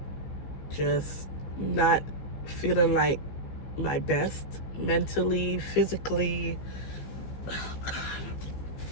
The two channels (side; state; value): right; late; 15 ms